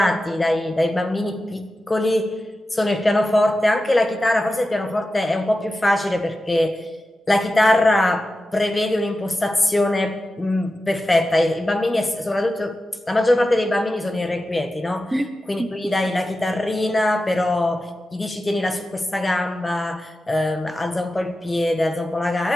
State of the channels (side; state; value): both; normal; correlation 0.92